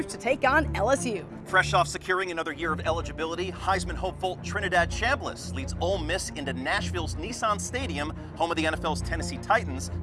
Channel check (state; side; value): identical; both; correlation 1.00